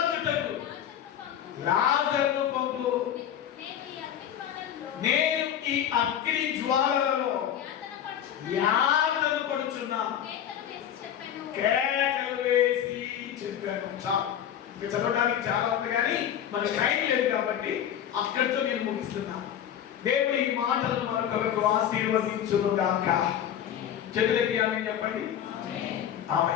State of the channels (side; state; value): right; quieter; 9.9 dB